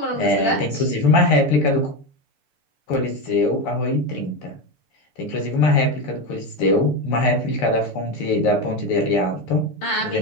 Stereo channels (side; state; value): right; late; 6.8 ms